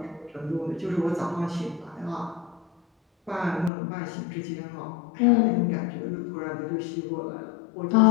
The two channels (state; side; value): drops out; right; at 3.7 s